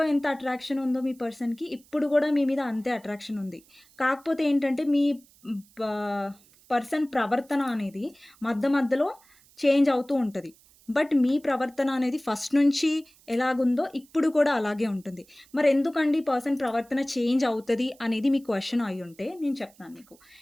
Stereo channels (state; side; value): noise; right; hiss, 29 dB below the sound